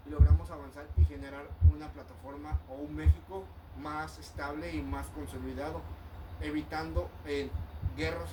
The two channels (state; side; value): identical; both; correlation 1.00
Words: y logramos avanzar y generar una plataforma o un México más estable y más consolidado, evitando guerras